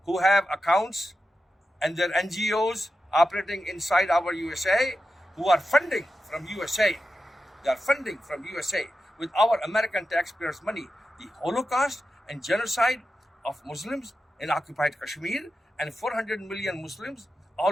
who have accounts and their NGOs operating inside our USA, who are funding from USA. They are funding from USA with our American taxpayers' money the Holocaust and genocide of Muslims in occupied Kashmir and 400 million Muslims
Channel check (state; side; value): normal; both; correlation 0.90